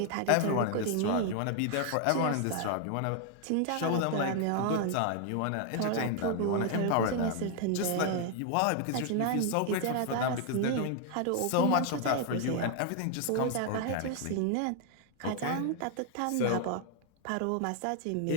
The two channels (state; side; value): different; both; correlation 0.00